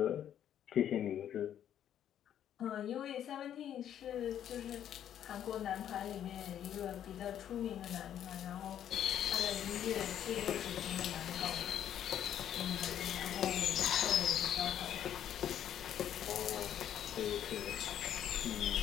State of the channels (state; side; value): quieter; right; 10.2 dB